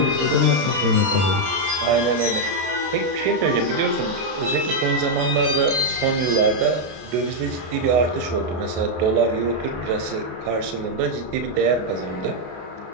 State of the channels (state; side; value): late; left; 32 ms